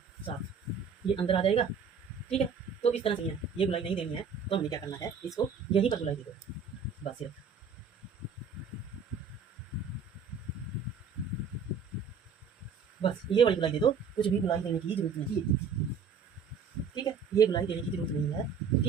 7, ये अंदर आ जाएगा, ठीक है। तो इस तरह से ये गुलाई नहीं देनी है, तो हमने क्या करना है, इसको यहीं पर गुलाई दे दो बस सिर्फ। बस ये वाली गुलाई दे दो, कुछ भी गुलाई देने की जरूरत नहीं है, ठीक है। ये गुलाई देने की जरूरत नहीं है,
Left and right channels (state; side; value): quieter; left; 5.9 dB